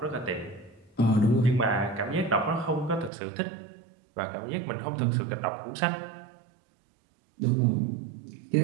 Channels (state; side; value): drops out; left; at 3.1 s